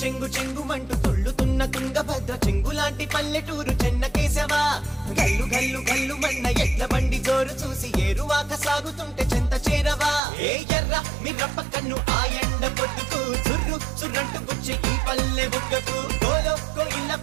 చెంగుమంటూ తుళ్ళుతున్న తుంగభద్ర చెంగులాంటి పల్లెటూరు చెన్నకేశవా. గల్లు గల్లు గల్లు మన్న ఎడ్ల బండి జోరు చూసి ఏరువాక సాగుతుంటే చెంత చేరవా. ఏ ఎర్ర మిర్రప్ప కన్ను ఆ ఎండ పొద్దుకు చుర్రు చుర్రంటు గుచ్చి ఈ పల్లె బుగ్గకు గోలో కోయిల్ల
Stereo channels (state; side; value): drops out; left; at 10.2 s